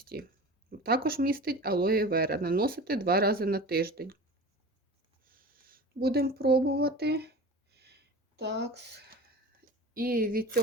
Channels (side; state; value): both; normal; correlation 0.35